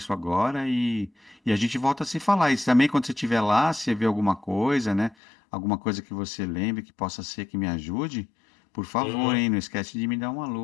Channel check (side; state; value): right; drops out; at 5.2 s